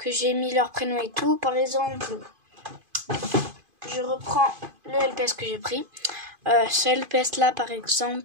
j'ai mis leur prénom et tout. Par exemple, je reprends le LPS que j'ai pris. Ce LPS là par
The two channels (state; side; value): late; left; 2.5 ms